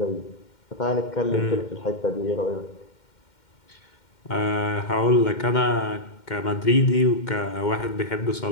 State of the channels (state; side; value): late; right; 2.1 ms